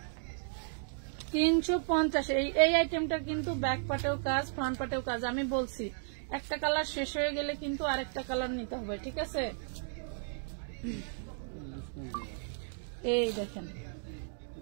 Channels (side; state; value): left; silent; digital silence